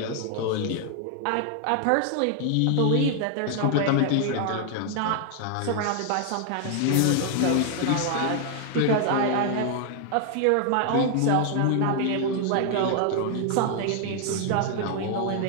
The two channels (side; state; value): both; different; correlation 0.00